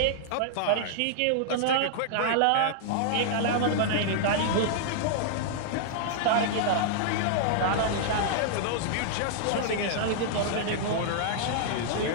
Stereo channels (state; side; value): different; both; correlation -0.01